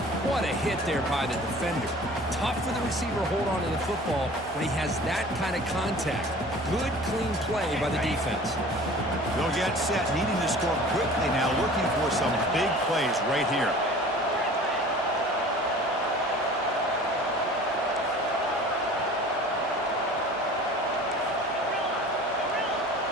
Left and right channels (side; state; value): both; normal; correlation 0.44